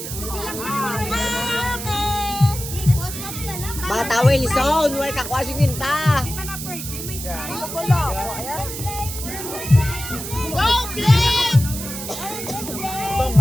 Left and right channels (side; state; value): right; noise; hiss, 8 dB below the sound